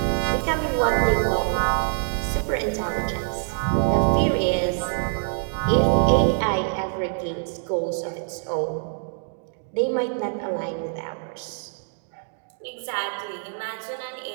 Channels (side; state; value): left; silent; digital silence